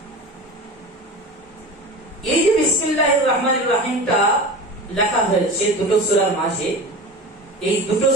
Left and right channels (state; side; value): normal; both; correlation 0.31